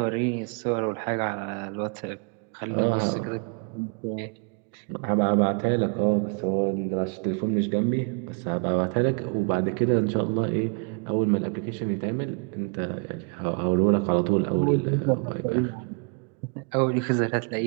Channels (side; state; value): left; quieter; 39.1 dB